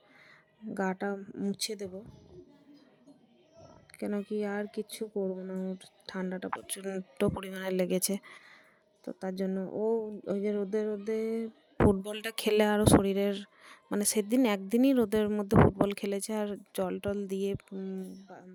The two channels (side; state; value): both; identical; correlation 1.00